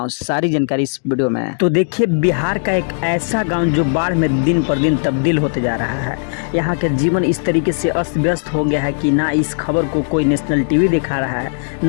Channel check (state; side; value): silent; right; digital silence